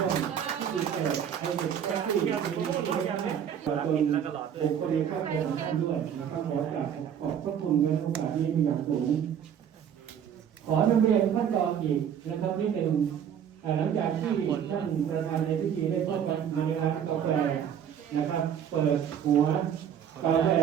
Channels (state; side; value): quieter; left; 8.8 dB